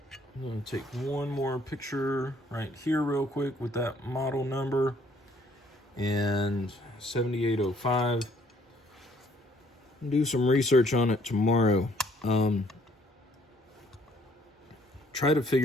I'm going to take one more picture right here real quick with that model number and 7805. Do some research on it tomorrow. Try to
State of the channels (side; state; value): both; normal; correlation 0.63